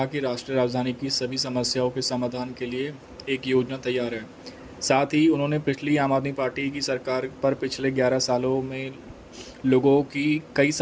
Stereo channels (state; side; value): identical; both; correlation 1.00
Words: कि राष्ट्रीय राजधानी की सभी समस्याओं के समाधान के लिए एक योजना तैयार है। साथ ही उन्होंने पिछली आम आदमी पार्टी की सरकार पर पिछले 11 सालों में लोगों की कई